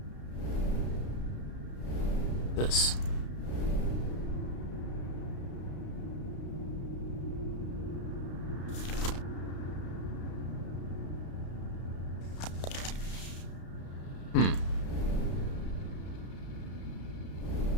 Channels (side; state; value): right; late; 33 ms